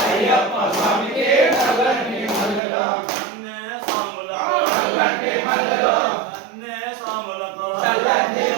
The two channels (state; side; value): drops out; left; at 2.6 s